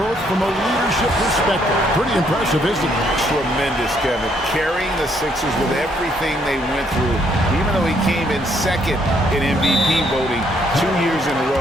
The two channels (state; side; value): normal; both; correlation 0.70